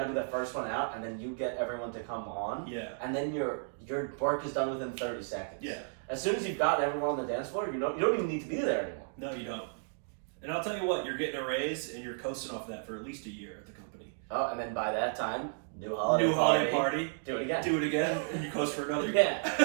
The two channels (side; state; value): left; silent; digital silence